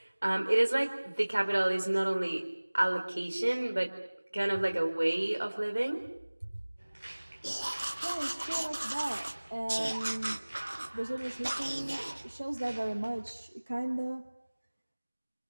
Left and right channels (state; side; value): inverted; both; correlation -1.00